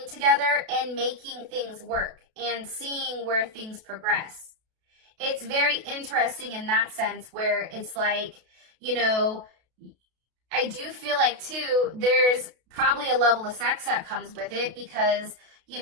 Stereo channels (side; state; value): left; late; 32 ms